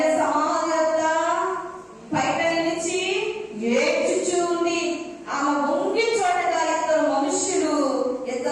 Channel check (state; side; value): identical; both; correlation 1.00